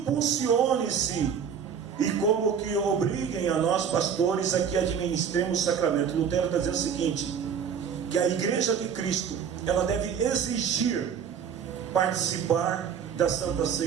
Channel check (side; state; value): left; quieter; 7.4 dB